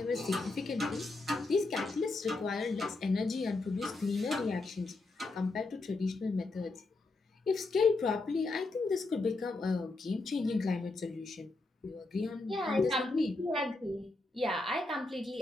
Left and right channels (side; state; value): right; quieter; 3.2 dB